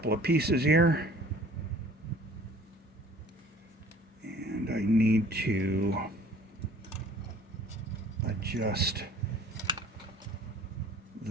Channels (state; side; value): normal; both; correlation 0.51